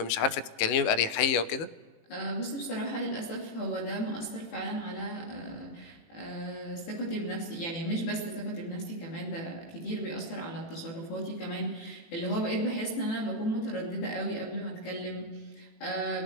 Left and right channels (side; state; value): right; late; 18 ms